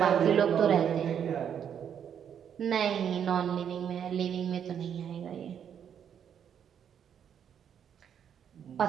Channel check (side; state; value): left; quieter; 8.5 dB